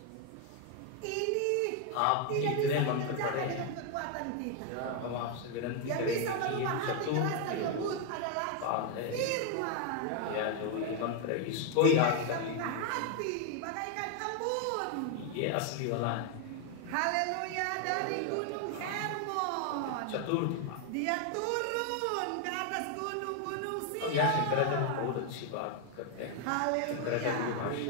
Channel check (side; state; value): both; different; correlation 0.01